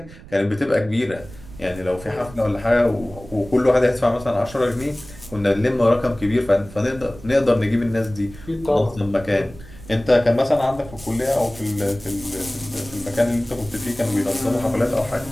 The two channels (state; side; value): noise; right; rumble, 18 dB below the sound